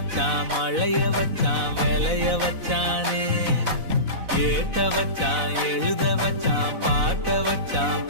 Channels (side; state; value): left; late; 4.0 ms